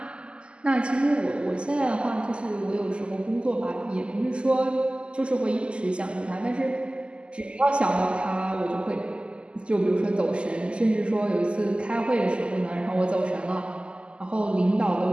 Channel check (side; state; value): left; late; 0.051 ms